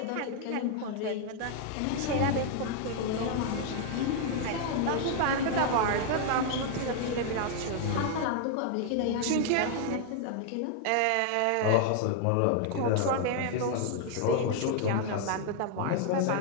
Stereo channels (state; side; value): different; both; correlation 0.00